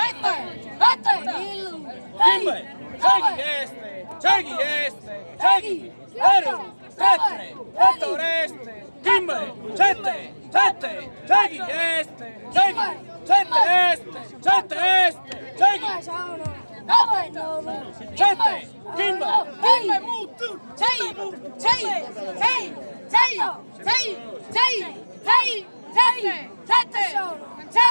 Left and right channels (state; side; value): inverted; both; correlation -1.00